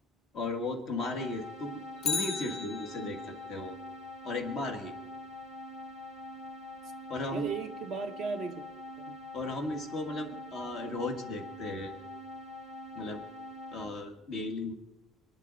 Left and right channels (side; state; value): both; normal; correlation 0.48